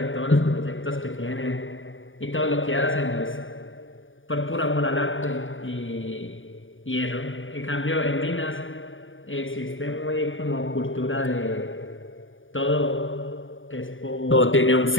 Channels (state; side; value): late; right; 0.57 ms